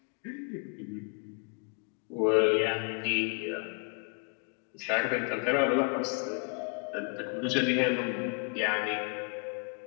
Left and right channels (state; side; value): quieter; right; 36.3 dB